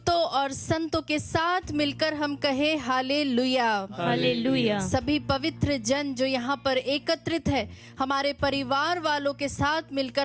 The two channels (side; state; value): both; identical; correlation 1.00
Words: और संतों के साथ मिलकर हम कहे हालेलुया, हालेलुया, सभी पवित्र जन जो यहाँ पर एकत्रित है हमारे परिवार वालों के साथ